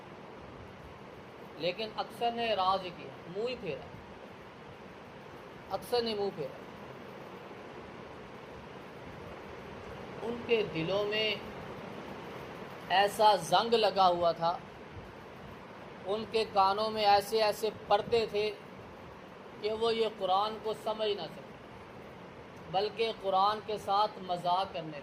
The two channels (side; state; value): both; identical; correlation 1.00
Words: لیکن اکثر نے اعراض ہی کیا، منہ ہی پھیرا، اکثر نے منہ پھیرا۔ ان کے دلوں میں ایسا زنگ لگا ہوا تھا، ان کے کانوں میں ایسے ایسے پردے تھے کہ وہ یہ قرآن کو سمجھ نہ سکے، بلکہ قرآن کے ساتھ مذاق کرنے